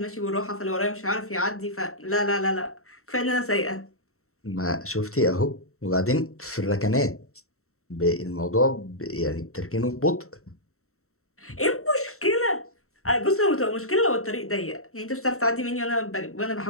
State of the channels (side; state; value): right; late; 0.63 ms